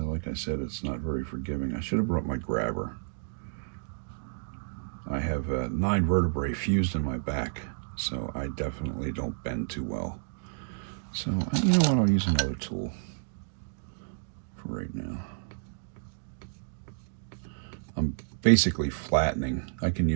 like I said, it's not very forgiving. I should have brought my grabber. I have 9 vertebrae fused in my back, so I definitely don't bend too well. So, you know what, I'll use another tool for right now. I'm basically flattening. I can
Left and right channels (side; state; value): left; silent; digital silence